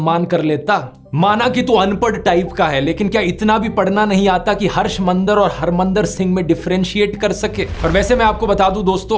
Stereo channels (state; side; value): identical; both; correlation 1.00